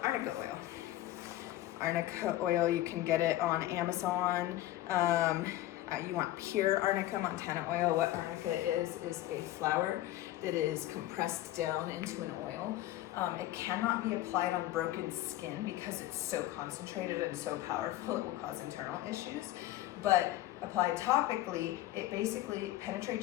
arnica oil. Arnica oil, you can get it on Amazon. You want pure arnica Montana oil. What arnica is a flower that is compressed down into an oil. It cannot be applied on broken skin because it's so concentrated and so powerful, it will cause internal issues. But applied topically, it basically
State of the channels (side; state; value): right; quieter; 15.0 dB